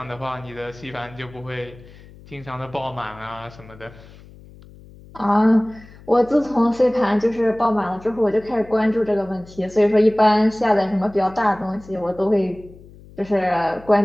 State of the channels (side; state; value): left; noise; hum, 21 dB below the sound